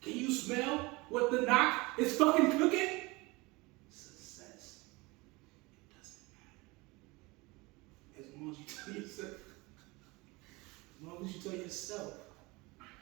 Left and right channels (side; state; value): left; quieter; 24.0 dB